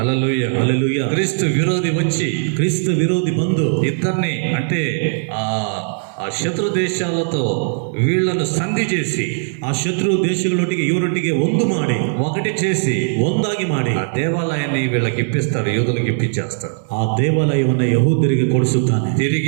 హల్లెలూయా. క్రీస్తు విరోధి వచ్చి, ಕ್ರಿಸ್ತ ವಿರೋಧಿ ಬಂದು ఇద్దరిని అంటే ఆ శత్రు దేశాలతో వీళ్లను సంధి చేసి, ಆ ಶತ್ರು ದೇಶಗಳೊಟ್ಟಿಗೆ ಇವರೊಟ್ಟಿಗೆ ಒಂದು ಮಾಡಿ, ఒకటి చేసి, ಒಂದಾಗಿ ಮಾಡಿ ఆ దేవాలయాన్ని వీళ్ళకి ఇప్పిస్తాడు, యూదులకు ఇప్పించేస్తాడు. ಆ ದೇವಾಲಯವನ್ನು ಯಹೂದ್ಯರಿಗೆ ಕೊಡಿಸುತ್ತಾನೆ.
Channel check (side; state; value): left; silent; digital silence